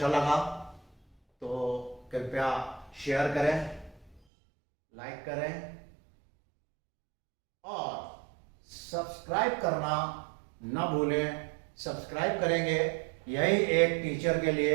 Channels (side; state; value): left; drops out; at 4.2 s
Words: लगा तो कृपया शेयर करें, लाइक करें और सब्सक्राइब करना न भूलें। सब्सक्राइब करेंगे, यही एक टीचर के